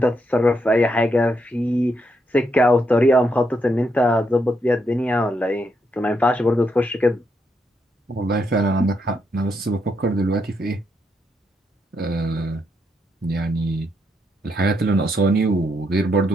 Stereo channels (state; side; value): normal; both; correlation 0.79